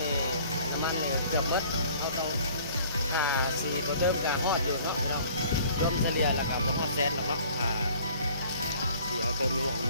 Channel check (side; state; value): both; inverted; correlation -0.53